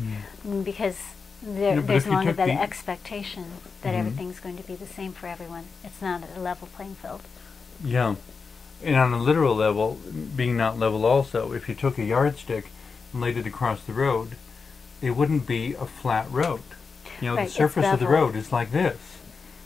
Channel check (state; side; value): quieter; right; 5.0 dB